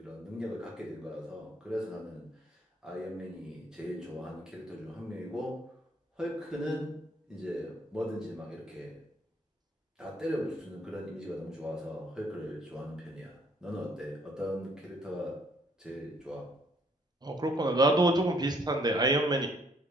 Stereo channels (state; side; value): normal; both; correlation 0.65